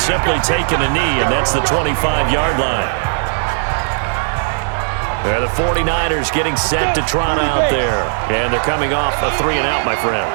simply taken a knee, and that's the 25-yard line. The 49ers getting set to trot out there. And they're coming off a 3-and-out, my friend.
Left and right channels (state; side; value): silent; left; 68 dB below the other